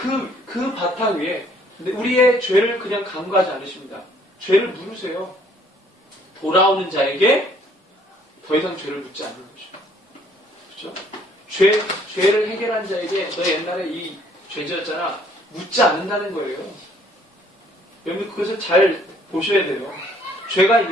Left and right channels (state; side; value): normal; both; correlation 0.61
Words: 그 바탕 위에 근데 우리의 죄를 그냥 간과하지 않으십니다. 죄를 물으세요. 돌아오는 자에게 더 이상 죄를 묻지 않는 거죠. 그렇죠? 죄를 해결한 자에게 너 옛날에 이 죄지었잖아 묻지 않는다는 거예요. 여러분 그것을 잘 보셔야 돼요. 죄가